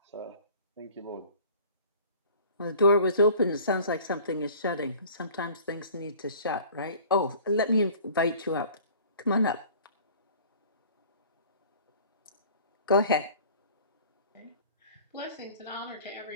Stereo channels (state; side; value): inverted; both; correlation -0.47